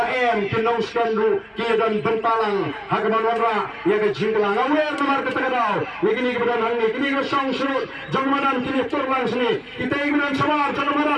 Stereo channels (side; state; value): both; identical; correlation 1.00